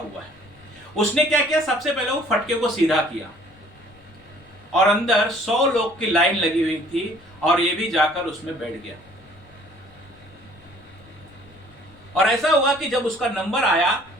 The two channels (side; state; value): left; noise; rumble, 27 dB below the sound